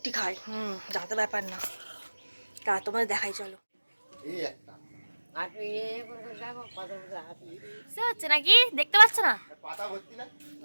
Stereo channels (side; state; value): both; inverted; correlation -1.00